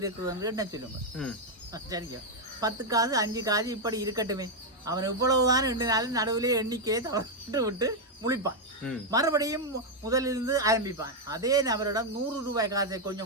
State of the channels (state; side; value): normal; both; correlation 0.01